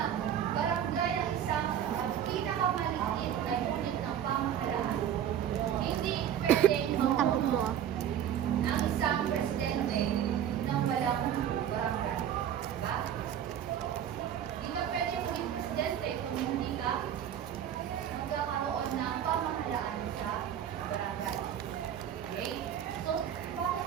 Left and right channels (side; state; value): left; quieter; 9.9 dB